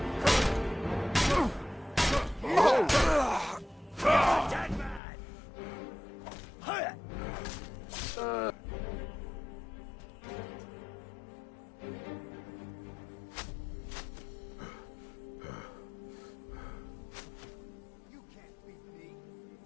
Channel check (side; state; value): right; drops out; at 5.0 s